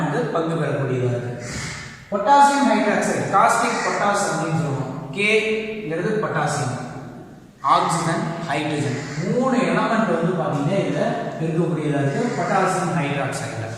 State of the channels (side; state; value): both; identical; correlation 1.00